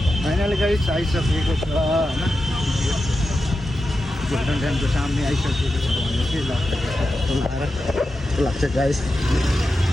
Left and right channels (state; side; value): normal; both; correlation 0.90